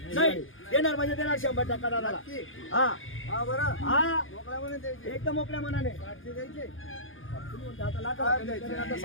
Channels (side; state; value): right; late; 0.58 ms